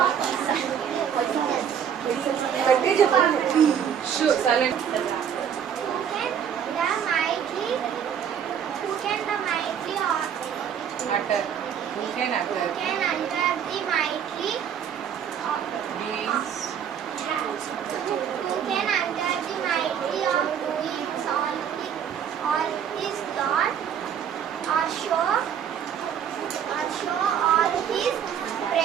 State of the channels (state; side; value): quieter; left; 8.5 dB